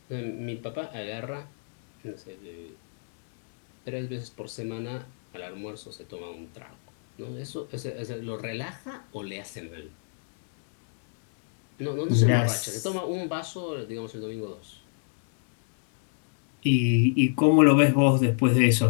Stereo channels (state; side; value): silent; right; digital silence